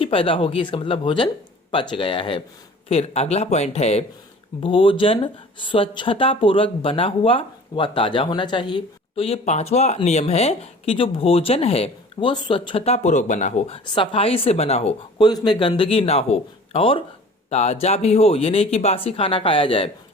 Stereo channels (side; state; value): both; normal; correlation 0.45